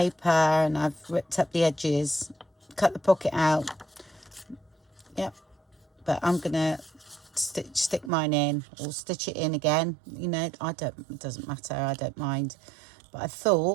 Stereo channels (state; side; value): drops out; left; at 8.1 s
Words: and I've ripped up the edges, cut the pocket out. Yep, but I'm going to stick mine in, or stitch it in again. You know, it doesn't matter. I don't mind. But I